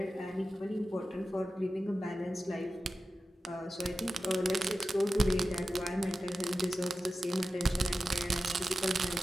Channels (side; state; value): both; normal; correlation 0.93